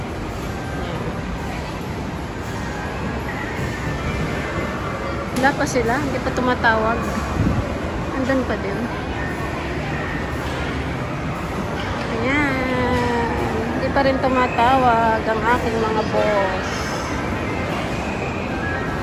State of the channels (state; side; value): identical; both; correlation 1.00